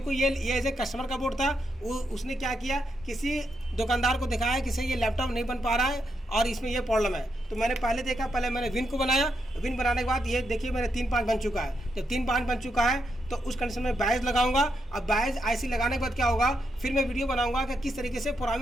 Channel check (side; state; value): both; normal; correlation 0.81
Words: ये एज ए कस्टमर का बोर्ड था, उसने क्या किया, किसी दुकानदार को दिखाया कि सही ये लैपटॉप नहीं बन पा रहा है और इसमें ये प्रॉब्लम है। तो मैंने पहले देखा, पहले मैंने विन को बनाया, विन बनाने के बाद ये देखिए मेरे 3-5 बन चुका है। जब 3-5 बन चुका है तो उस कंडीशन में बायस लगाऊंगा। अब बायस आईसी लगाने के बाद क्या होगा, फिर मैं वीडियो बनाऊंगा कि किस तरीके से